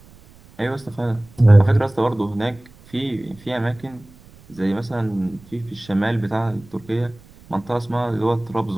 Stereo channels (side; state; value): right; noise; rumble, 24 dB below the sound